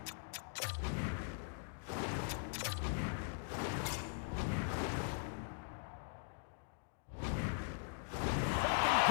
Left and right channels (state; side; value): silent; right; digital silence